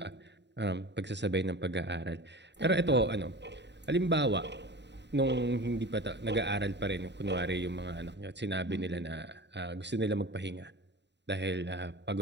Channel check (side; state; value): left; late; 0.51 ms